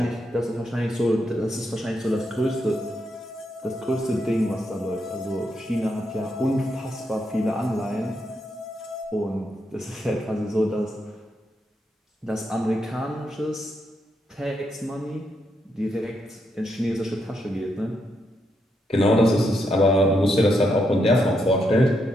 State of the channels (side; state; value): both; normal; correlation 0.80